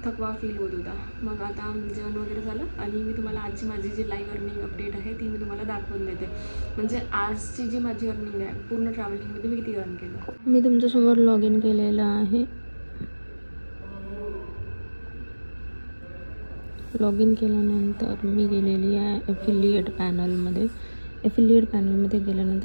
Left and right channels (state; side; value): inverted; both; correlation -1.00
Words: थकवा फील होत होता. मग आता जेवण वगैरे झालं आणि मी तुम्हाला आजची माझी जी लाईव्ह अर्निंग अपडेट आहे ती मी तुम्हाला दाखवून देते. म्हणजे आजची जी माझी अर्निंग आहे पूर्ण ट्रॅव्हलिंगमध्ये मी किती अर्न केलं. मी तुमच्यासमोर लॉग इन केलेलं आहे. लॉग इन केल्यानंतर मी गेलेली आहे ॲफिलिएट पॅनलमध्ये. एफिलिएट पॅनलमध्ये